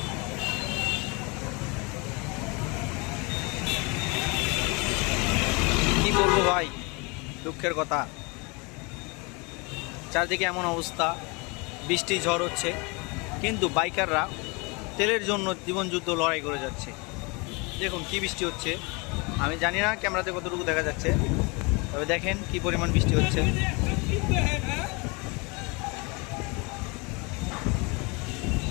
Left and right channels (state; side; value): quieter; right; 28.9 dB